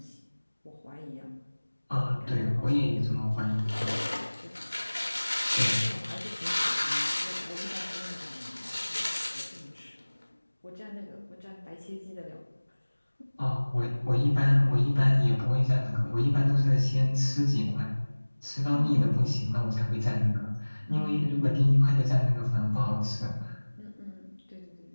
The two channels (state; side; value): inverted; both; correlation -1.00